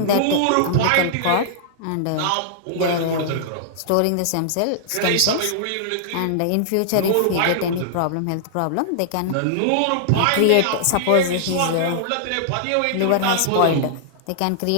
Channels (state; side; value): different; both; correlation -0.01